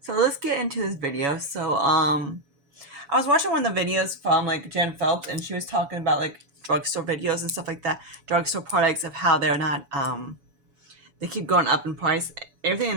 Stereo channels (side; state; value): left; late; 7.1 ms